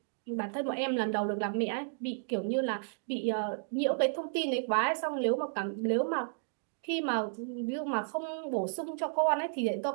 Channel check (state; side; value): silent; left; digital silence